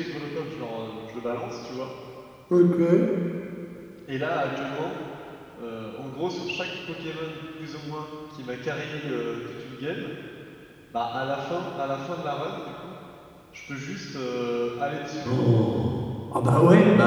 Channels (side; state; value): both; identical; correlation 1.00